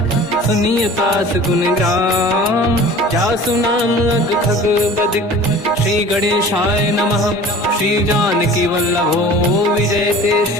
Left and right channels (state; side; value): normal; both; correlation 0.43